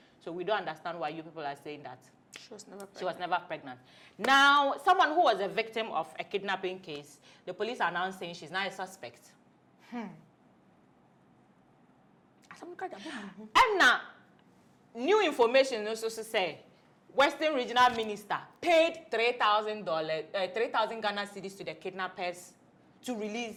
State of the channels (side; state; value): both; identical; correlation 1.00